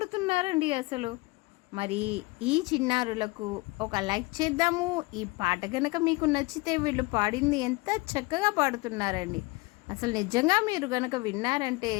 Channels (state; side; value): quieter; right; 24.0 dB